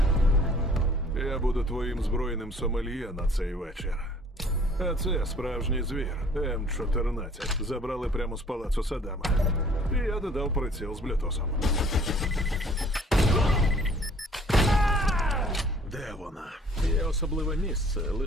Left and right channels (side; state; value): both; normal; correlation 0.55